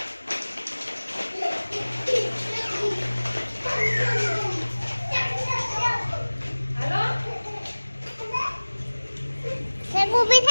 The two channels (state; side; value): inverted; both; correlation -1.00